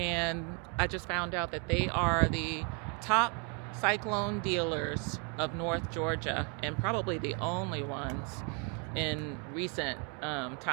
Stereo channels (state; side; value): quieter; left; 36.8 dB